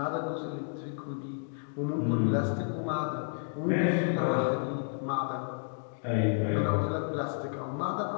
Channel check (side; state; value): right; silent; digital silence